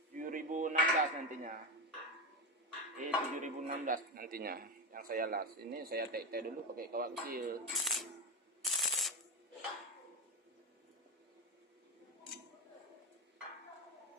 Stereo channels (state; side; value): normal; both; correlation 0.16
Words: 7016 nantinya. 7016 nantinya yang saya las. Ini saya tek-tek dulu pakai kawat kecil.